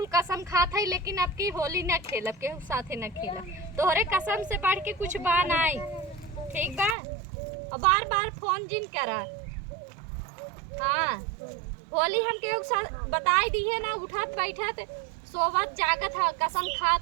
कसम खात है, लेकिन आपकी होली न खेलब, केहू साथे न खेलब। तोहरे कसम से बढ़ के कुछ बा नहीं, ठीक बा। और बार बार फोन जिन करा। हाँ, होली हम केहू साथ बताई दी है ना, उठत बैठत सोवत जागत है, कसम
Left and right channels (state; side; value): drops out; left; at 7.0 s